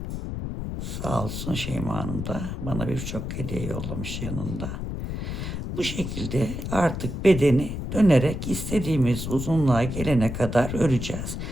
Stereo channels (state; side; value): noise; left; rumble, 5 dB below the sound